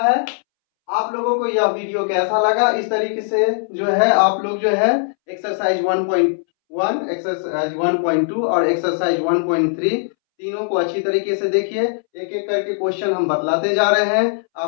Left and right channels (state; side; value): silent; right; 65 dB below the other